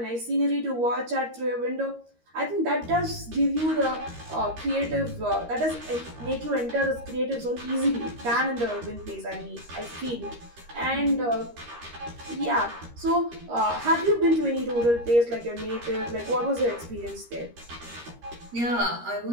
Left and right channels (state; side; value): late; left; 13 ms